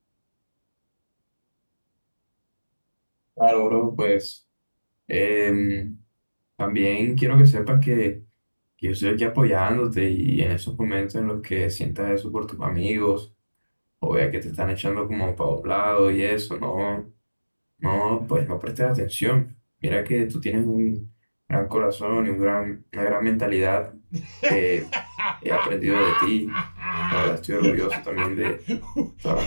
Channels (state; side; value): inverted; both; correlation -1.00